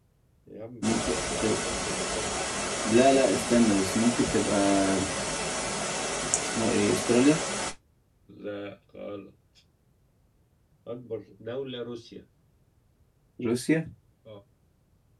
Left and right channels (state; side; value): identical; both; correlation 1.00